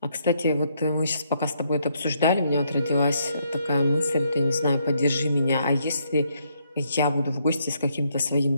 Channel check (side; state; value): both; inverted; correlation -0.73